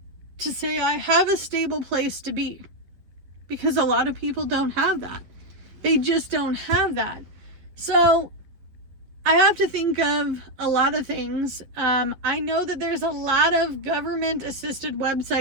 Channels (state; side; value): late; left; 11 ms